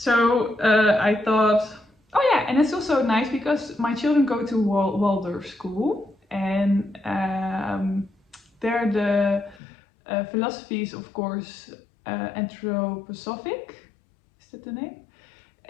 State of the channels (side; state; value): right; drops out; at 9.6 s